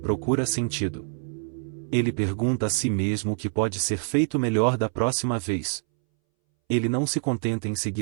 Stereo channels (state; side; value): silent; left; 61 dB below the other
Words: procura sentido. Ele pergunta a si mesmo o que pode ser feito melhor da próxima vez. Ele não se contenta em